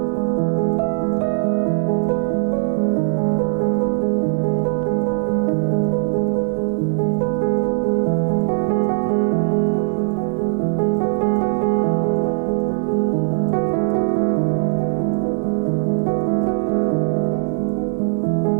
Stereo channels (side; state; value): left; silent; 66 dB below the other